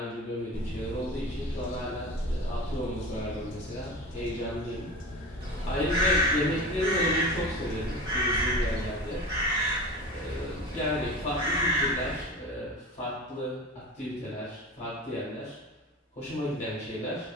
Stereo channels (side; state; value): both; normal; correlation 0.32